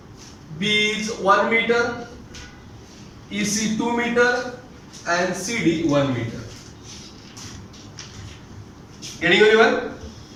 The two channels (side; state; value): both; identical; correlation 1.00